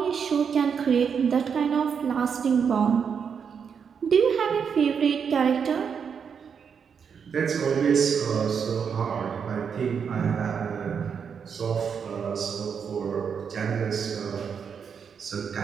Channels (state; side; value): quieter; left; 6.8 dB